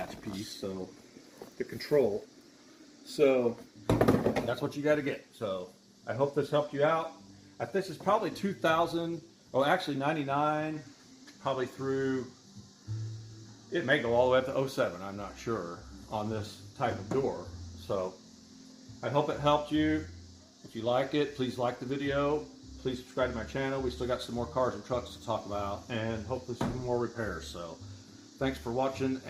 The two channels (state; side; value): identical; both; correlation 1.00